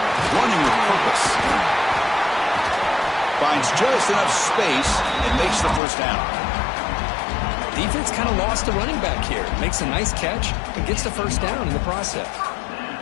Running with purpose. Finds just enough space and makes the first down. Defense kind of lost the running back here. Makes a nice catch and gets the first down in the process.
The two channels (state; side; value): drops out; right; at 5.8 s